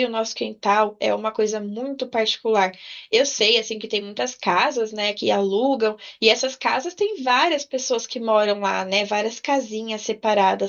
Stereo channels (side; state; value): both; identical; correlation 1.00